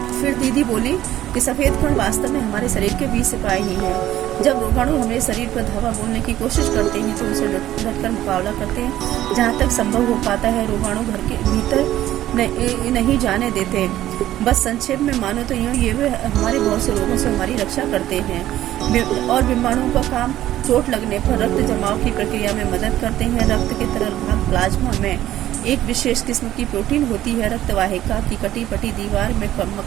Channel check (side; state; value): left; quieter; 13.4 dB